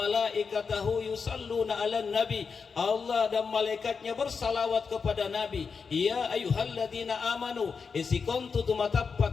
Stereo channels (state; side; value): quieter; right; 5.4 dB